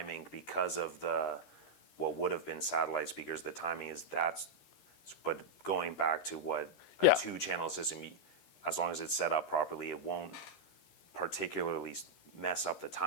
because of the what would have been satellite speakers, the timing is that's. But going back to what a Yeah. 2-channel system, as long as it's set up properly, it won't particularly mess up the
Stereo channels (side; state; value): right; late; 13 ms